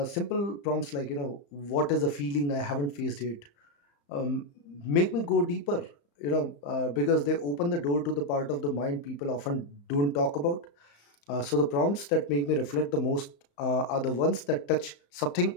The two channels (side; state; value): right; late; 35 ms